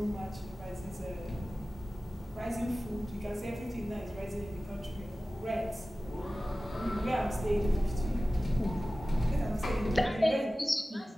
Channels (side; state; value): both; normal; correlation 0.96